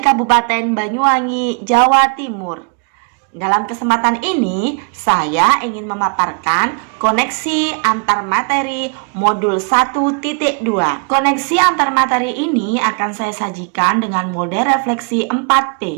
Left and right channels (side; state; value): left; quieter; 38.7 dB